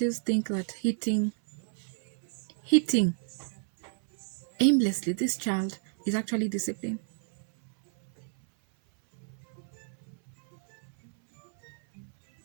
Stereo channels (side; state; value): left; silent; 57 dB below the other